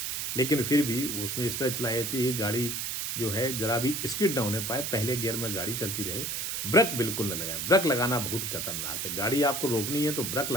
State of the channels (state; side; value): noise; right; hiss, 2 dB below the sound